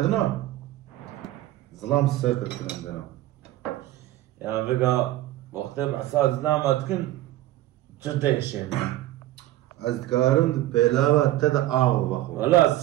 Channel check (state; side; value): quieter; left; 15.2 dB